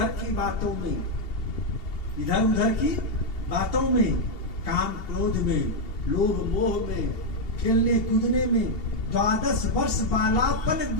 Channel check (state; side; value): late; right; 2.8 ms